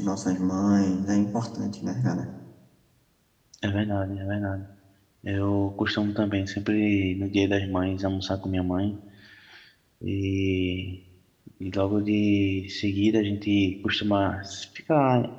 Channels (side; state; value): both; identical; correlation 1.00